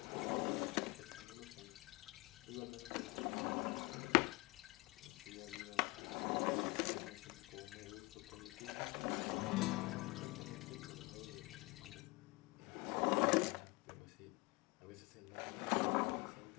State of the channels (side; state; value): right; quieter; 24.4 dB